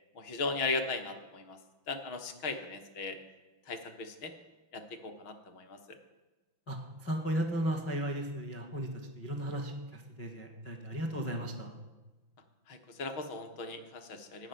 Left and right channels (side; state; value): right; late; 5.9 ms